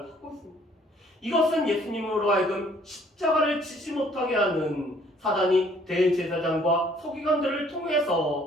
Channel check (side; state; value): both; normal; correlation 0.60